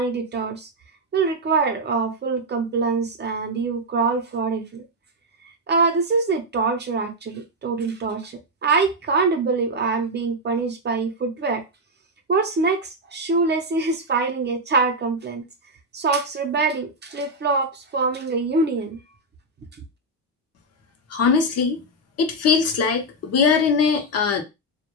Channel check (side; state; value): both; normal; correlation 0.01